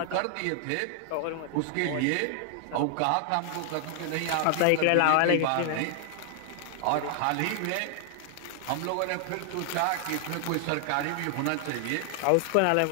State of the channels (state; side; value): different; both; correlation 0.00